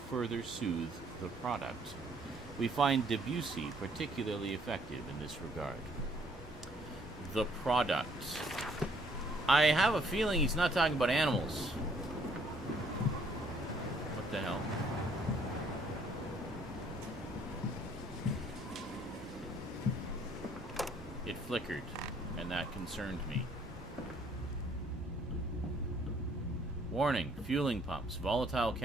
soothe the product. We find Debussy particularly effective in this regard. The product. I have a feeling he's not talking about animals. What the hell? It flickered, and that concerned me. Warning, fueling pumps. Volatile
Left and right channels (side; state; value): both; normal; correlation 0.63